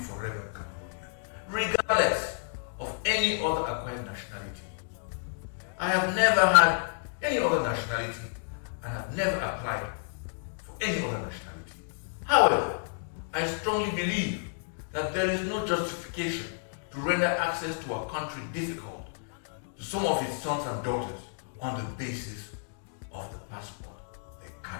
Cameroonian, regardless of any other acquired nationality. I have never had any other nationality and have never applied for any other nationality. However, I strongly believe that there is no justification to render access to our country difficult to some of its sons and daughters on the basis of the passport they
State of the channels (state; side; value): silent; right; digital silence